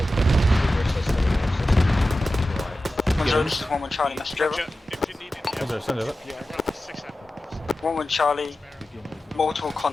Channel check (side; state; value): both; normal; correlation 0.94